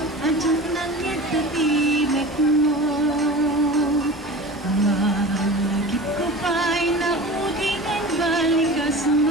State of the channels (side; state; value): both; normal; correlation 0.34